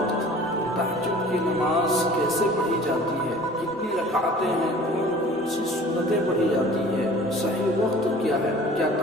تہجد کی نماز کیسے پڑھی جاتی ہے، کتنی رکعتیں ہیں، کون سی سنتیں پڑھی جاتی ہے، صحیح وقت کیا ہے، کیا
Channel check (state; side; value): normal; both; correlation 0.46